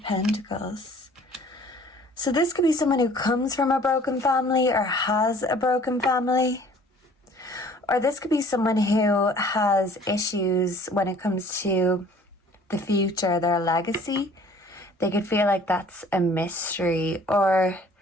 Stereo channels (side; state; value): both; normal; correlation 0.52